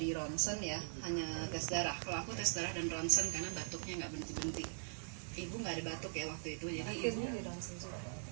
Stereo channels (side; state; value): left; silent; 50 dB below the other